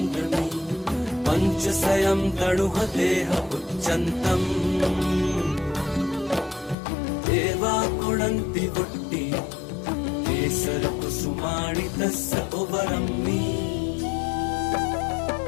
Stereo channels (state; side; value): drops out; right; at 6.8 s